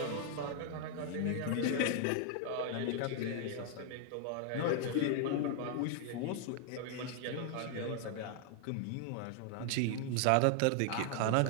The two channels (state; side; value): different; both; correlation 0.00